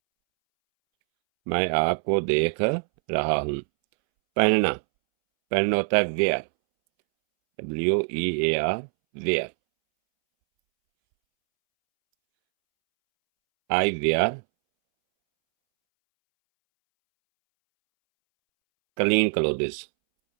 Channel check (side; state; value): left; silent; 63 dB below the other